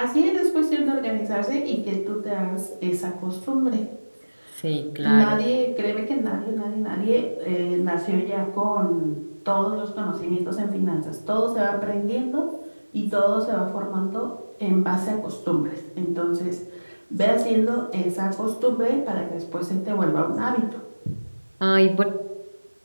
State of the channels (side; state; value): both; inverted; correlation -1.00